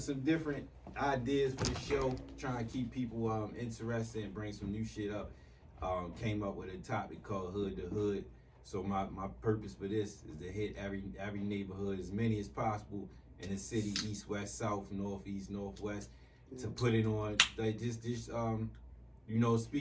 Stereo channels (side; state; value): both; identical; correlation 1.00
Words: some different ideas for the show, trying to keep people interested and bring some new shit up. Came up with a topic called Hood to Hood. So my purpose for this is to hit every neighborhood, as many as possible in the city, east, west, south, north, east, northwest, to put it on, like just